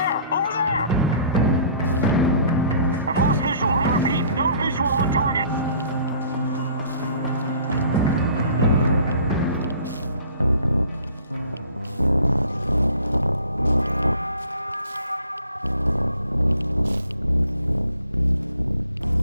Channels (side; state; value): both; inverted; correlation -0.52